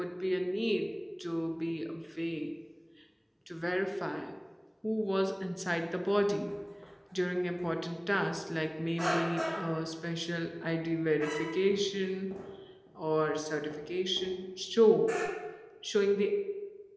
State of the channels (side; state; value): both; identical; correlation 1.00